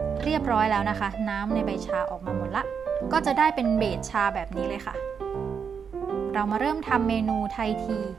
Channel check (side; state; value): left; quieter; 6.6 dB